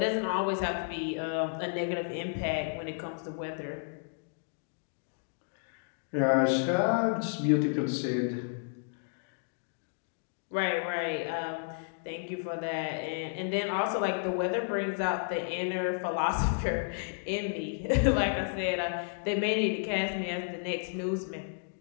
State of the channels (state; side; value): silent; right; digital silence